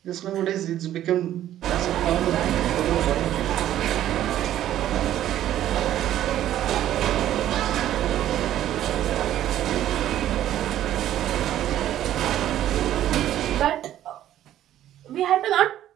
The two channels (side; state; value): left; quieter; 12.2 dB